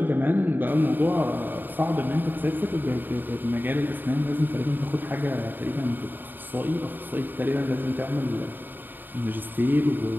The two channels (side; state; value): left; late; 0.091 ms